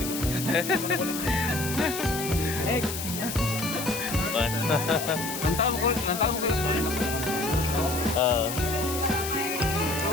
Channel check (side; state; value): left; noise; hiss, 6 dB below the sound